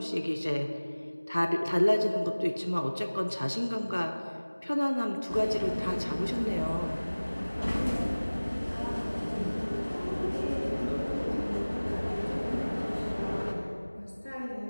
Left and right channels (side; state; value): both; inverted; correlation -1.00